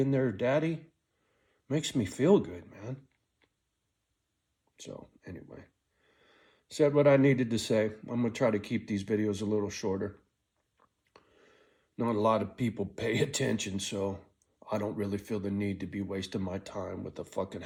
their daddy, makes me feel good, man. So anyway, said what I needed to say. I'm going to try to keep these videos a little shorter. Not a lot of people pay attention, so I don't really feel the need to be wasting my time with a fucking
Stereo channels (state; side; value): identical; both; correlation 1.00